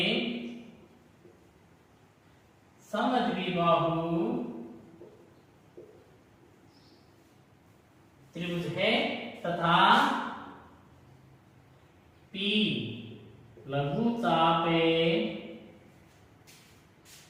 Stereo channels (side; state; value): both; identical; correlation 1.00